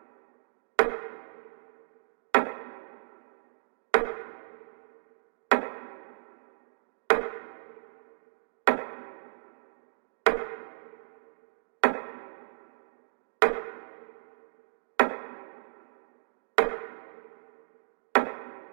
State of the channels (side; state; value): left; silent; digital silence